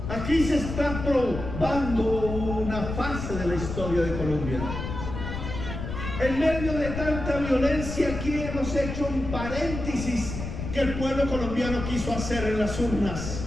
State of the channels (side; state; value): left; noise; rumble, 6 dB below the sound